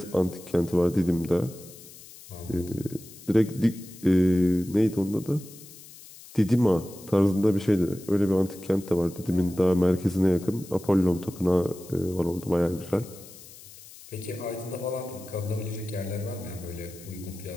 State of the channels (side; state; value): left; noise; hiss, 19 dB below the sound